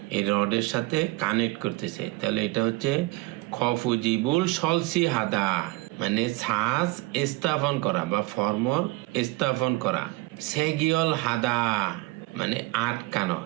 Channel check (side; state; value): left; quieter; 22.0 dB